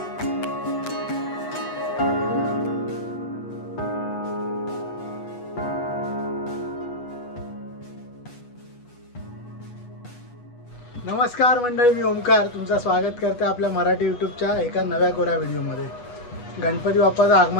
नमस्कार मंडळी, मी ओमकार तुमचं स्वागत करते आपल्या मराठी यूट्यूबच्या एका नव्या कोऱ्या व्हिडिओमध्ये. गणपती बाप्पाचं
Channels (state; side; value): late; right; 8.2 ms